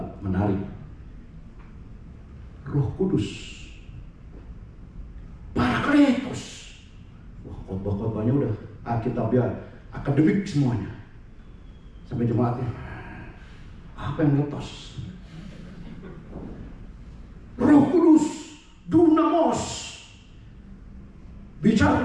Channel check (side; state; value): both; identical; correlation 1.00